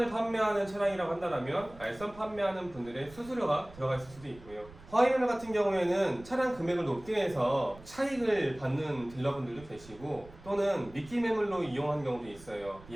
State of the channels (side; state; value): right; noise; rumble, 20 dB below the sound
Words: 판매하는 차량이라고 한다면 알선 판매하는 분들의 수수료가 들어가 있을 수도 있고요. 화이매매 같은 경우에는 차량 금액을 높게 해서 차익을 받는 딜러분들도 계시고, 또는 미끼 매물로 이용하는 경우도 있어요.